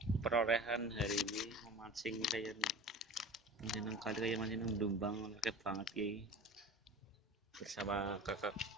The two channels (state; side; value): normal; both; correlation 0.36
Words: hari ini memancing kayak mancing kali kayak mancing Dumbang akeh banget ki bersama kakak